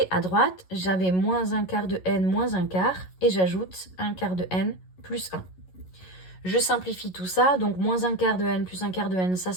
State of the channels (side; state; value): right; late; 11 ms